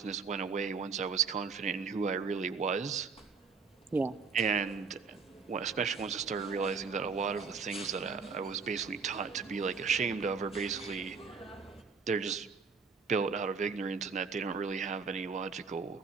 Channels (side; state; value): left; quieter; 5.2 dB